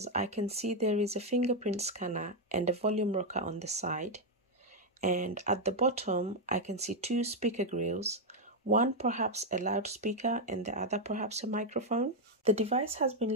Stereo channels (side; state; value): both; normal; correlation 0.01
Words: I can see there is a fingerprint scanner and a volume rocker on the side. And at the bottom, I can see 2 speaker grills, one perhaps a loudspeaker and the other perhaps a microphone. The device has been